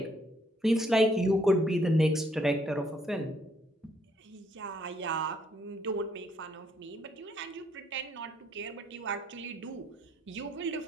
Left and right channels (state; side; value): normal; both; correlation 0.69